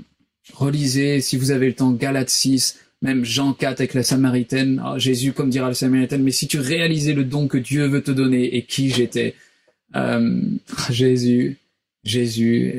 Relisez, si vous avez le temps, Galates 6, même Jean 4 avec la Samaritaine. Oh, Jésus, comme dira la Samaritaine, mais si tu réalisais le don que Dieu veut te donner et qui j'étais. Jésus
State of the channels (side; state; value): both; identical; correlation 1.00